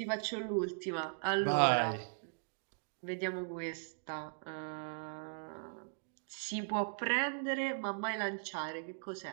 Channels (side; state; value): left; silent; digital silence